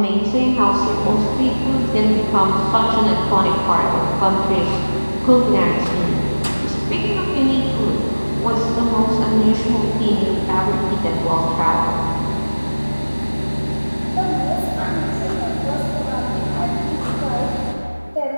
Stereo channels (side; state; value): both; inverted; correlation -1.00